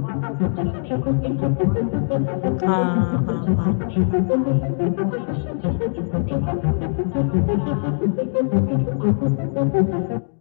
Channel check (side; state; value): right; silent; digital silence